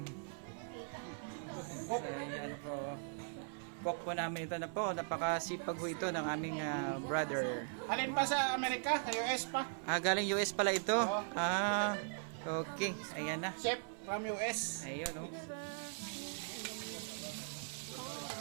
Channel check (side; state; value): left; silent; 51 dB below the other